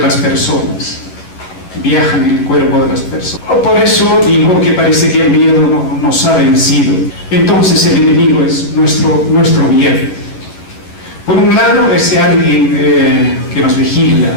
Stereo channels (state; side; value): late; right; 11 ms